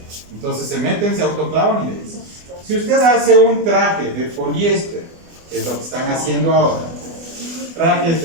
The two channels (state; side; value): late; left; 24 ms